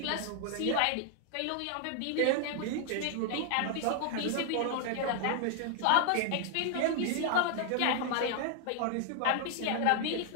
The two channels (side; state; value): both; different; correlation 0.00